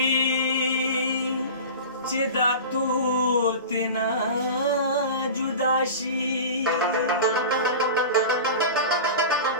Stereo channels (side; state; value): both; inverted; correlation -0.32